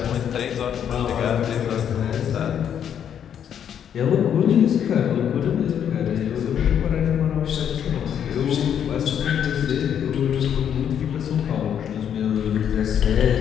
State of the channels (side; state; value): right; quieter; 8.9 dB